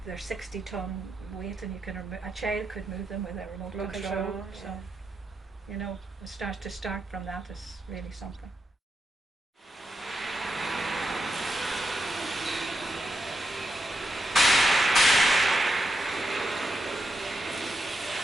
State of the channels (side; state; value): both; normal; correlation 0.85